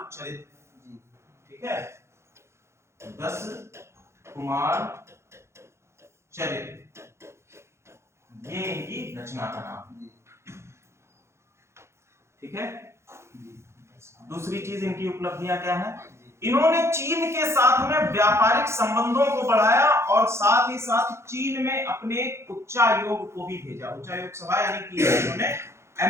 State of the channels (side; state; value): left; late; 0.13 ms